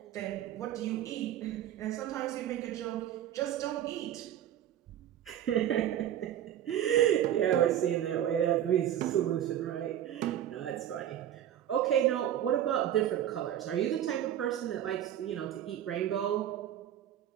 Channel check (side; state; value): left; quieter; 11.1 dB